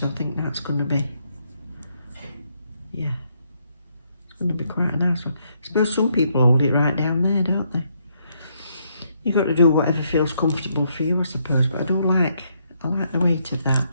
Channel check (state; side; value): inverted; both; correlation -0.74